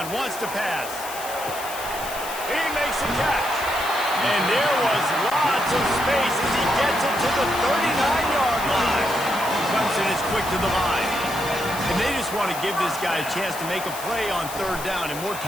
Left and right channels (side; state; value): left; noise; hiss, 11 dB below the sound